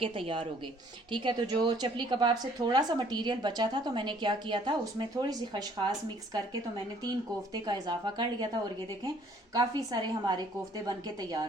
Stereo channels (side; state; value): both; normal; correlation 0.60